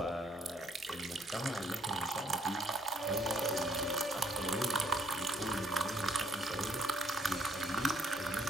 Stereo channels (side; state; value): both; normal; correlation 0.66